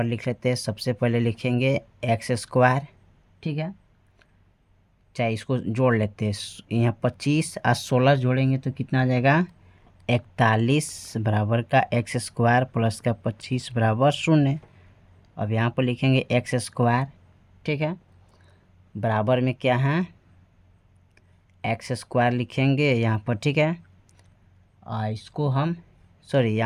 लिख लेते हैं। सबसे पहले लिखेंगे एक्स स्क्वायर, ठीक है, चाहे इसको जोड़ लेते हैं। यहाँ 25 और 16 जोड़ेंगे तो कितना आ जाएगा, 41 बराबर का एक्स स्क्वायर प्लस का 25 बराबर 0। अब यहाँ पर लिखेंगे एक्स स्क्वायर, ठीक है, बराबर में क्या है, एक्स स्क्वायर लिखेंगे यहाँ पर, ठीक है। और इसको हम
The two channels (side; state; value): both; identical; correlation 1.00